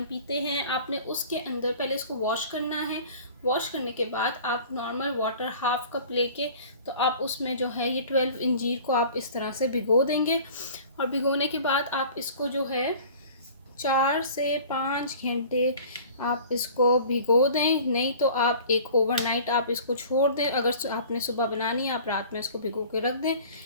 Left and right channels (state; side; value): inverted; both; correlation -0.45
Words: पीते हैं, आपने उसके अंदर पहले इसको वॉश करना है। वॉश करने के बाद आप नॉर्मल वाटर हाफ कप लेके तो आप उसमें जो है ये 12 अंजीर को आप इस तरह से भिगो देंगे। और भिगोने के बाद आप इसको जो है 4 से 5 घंटे आप इसको भिगो दें, नहीं तो आप एक ओवरनाइट आप इसको छोड़ दें। अगर आपने सुबह बनानी है आप रात में इसको भिगो के रख दें